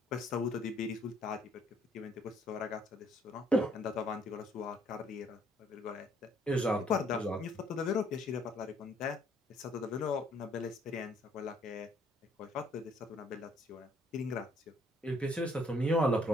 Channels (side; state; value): both; normal; correlation 0.65